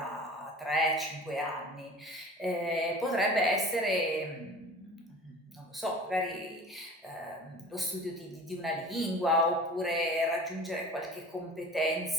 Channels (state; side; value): normal; both; correlation 0.41